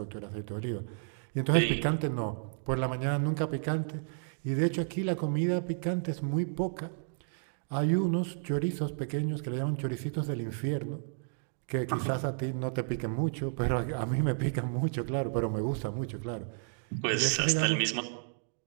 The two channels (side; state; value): left; silent; 56 dB below the other